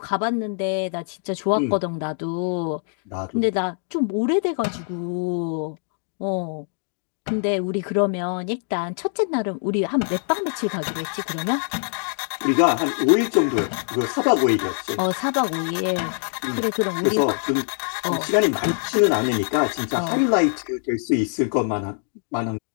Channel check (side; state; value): right; silent; 58 dB below the other